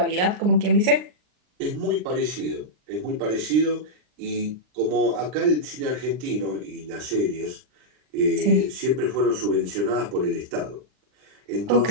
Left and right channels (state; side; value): late; left; 39 ms